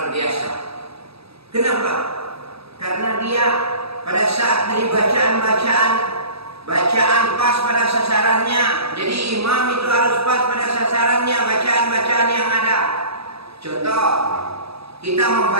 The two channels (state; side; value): late; left; 0.78 ms